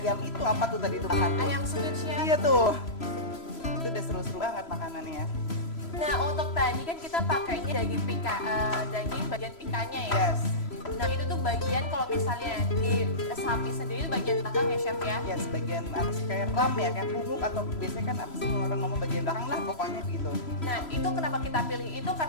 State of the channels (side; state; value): right; late; 3.0 ms